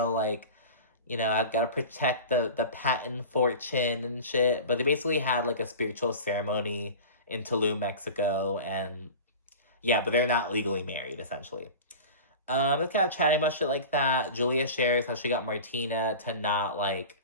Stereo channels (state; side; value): inverted; both; correlation -0.34